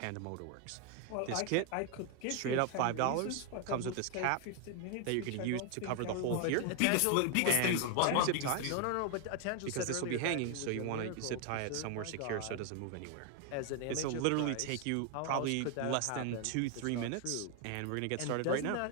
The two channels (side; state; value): both; different; correlation 0.01